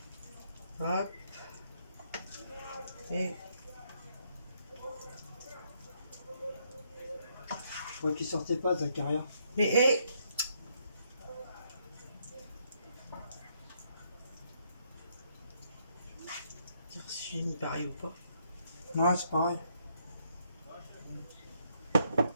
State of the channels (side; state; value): both; inverted; correlation -0.73